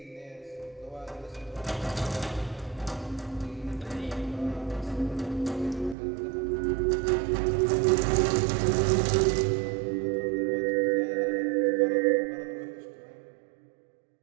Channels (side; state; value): left; drops out; at 6.0 s